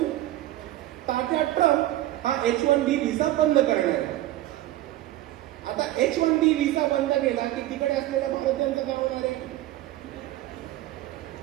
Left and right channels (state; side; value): quieter; left; 15.0 dB